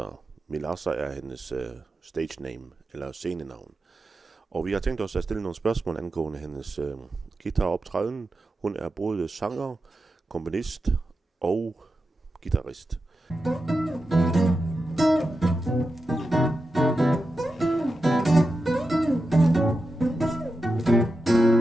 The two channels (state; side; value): normal; both; correlation 0.90